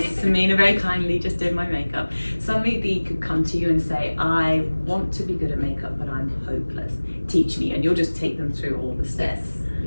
Samina very kindly just did my makeup. Somebody could come to you and say, I want to be good at makeup, but I'm hopeless. Teach me, and you'll just take them through all the steps.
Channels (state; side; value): inverted; both; correlation -1.00